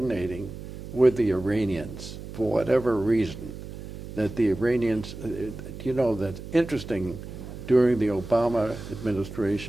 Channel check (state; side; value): noise; right; hum, 11 dB below the sound